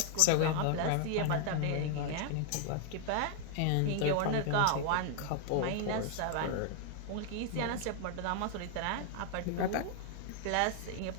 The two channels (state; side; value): different; both; correlation 0.00